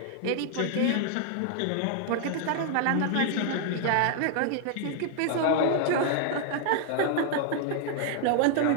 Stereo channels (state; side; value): different; both; correlation 0.00